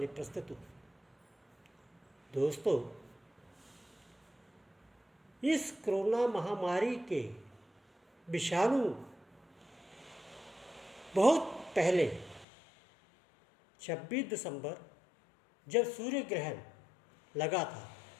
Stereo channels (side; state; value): right; drops out; at 12.5 s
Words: प्रस्तुत हूँ। दोस्तों, इस कोरोना महामारी के विषाणु बहुत पहले 26 दिसंबर जब सूर्य ग्रहण लगा था,